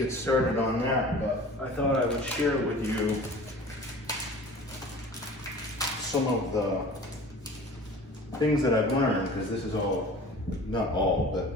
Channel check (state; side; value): normal; both; correlation 0.42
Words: started on that. But I thought I would share with you some of the things that I've learned, because this is all, not all,